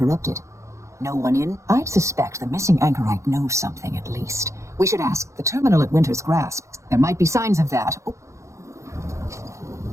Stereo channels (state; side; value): late; left; 0.14 ms